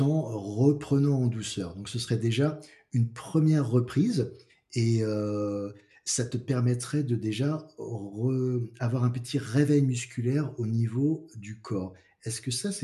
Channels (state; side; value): identical; both; correlation 1.00